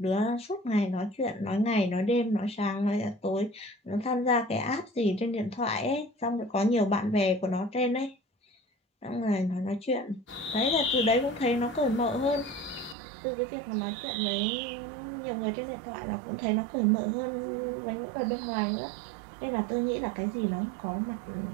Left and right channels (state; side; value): drops out; left; at 13.0 s